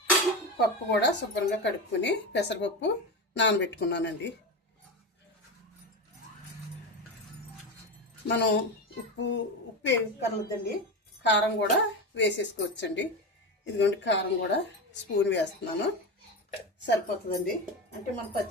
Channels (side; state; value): both; normal; correlation 0.19